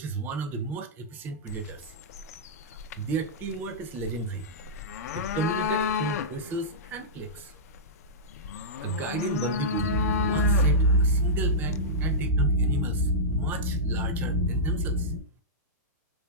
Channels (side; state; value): both; normal; correlation -0.14